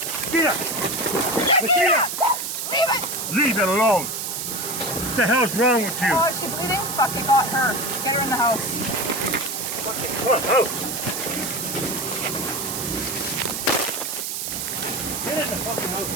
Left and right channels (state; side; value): noise; right; hiss, 4 dB below the sound